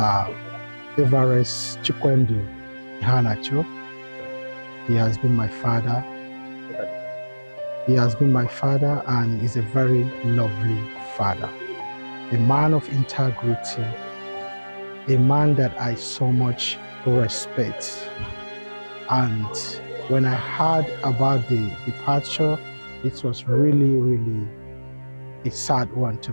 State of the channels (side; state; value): both; inverted; correlation -1.00